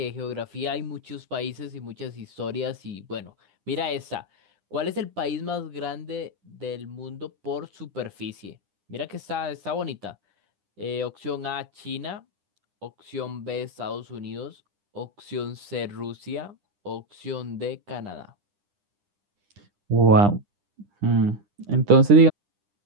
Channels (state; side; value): late; left; 9.9 ms